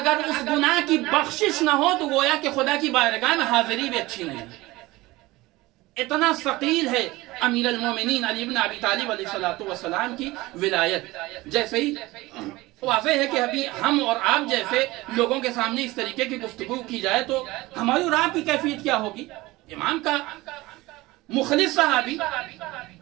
اس گناہ کی بخشش نہ ہو تو گویا کہ خدا کی بارگاہ میں حاضری بھی اچھی نہیں. اتنا ثقیل ہے امیر المومنین علی ابن ابی طالب علیہ السلام کی ولایت. جیسے ہی واضح ہے کہ ابھی ہم اور آپ جیسے لوگوں کے سامنے اس طریقے کی گفتگو کی جائے تو ہماری اور آپ کی کیفیت کیا ہوگی. امام کا مخلص صحابی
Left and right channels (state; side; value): quieter; left; 20.0 dB